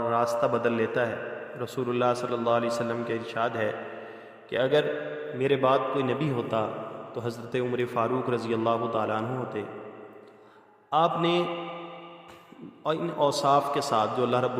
راستہ بدل لیتا ہے، رسول اللہ صلی اللہ علیہ وسلم کے ارشاد ہے کہ اگر میرے بعد کوئی نبی ہوتا تو حضرت عمر فاروق رضی اللہ تعالیٰ عنہ ہوتے۔ آپ نے ان اوصاف کے ساتھ جو اللہ رب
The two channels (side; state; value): both; identical; correlation 1.00